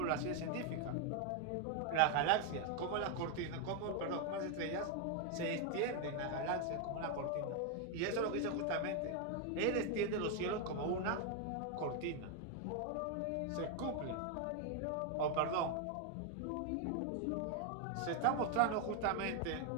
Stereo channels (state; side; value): different; both; correlation 0.01